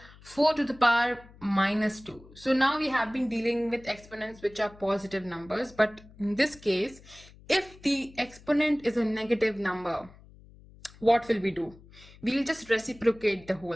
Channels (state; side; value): noise; left; hum, 23 dB below the sound